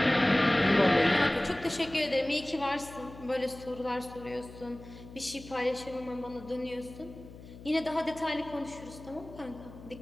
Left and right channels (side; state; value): left; noise; hum, 17 dB below the sound